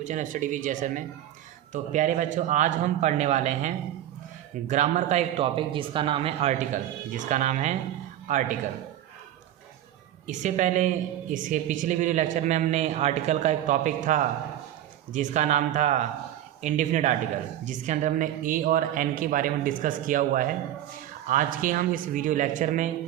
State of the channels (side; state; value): left; quieter; 12.1 dB